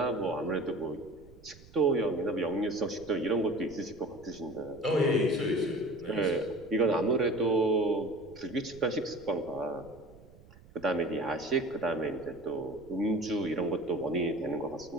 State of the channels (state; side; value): noise; right; rumble, 22 dB below the sound